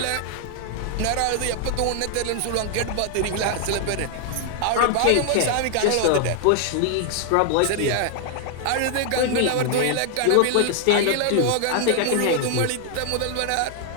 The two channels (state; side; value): different; both; correlation 0.00